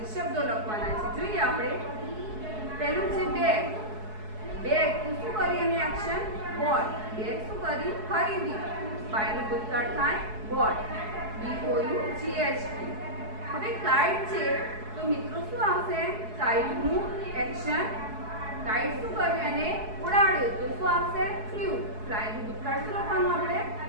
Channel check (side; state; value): left; late; 4.7 ms